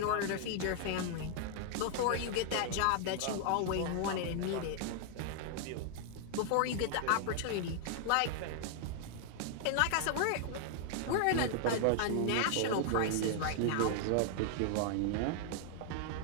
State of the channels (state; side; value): different; both; correlation 0.00